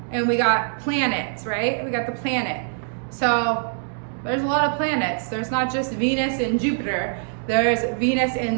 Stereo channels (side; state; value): left; silent; digital silence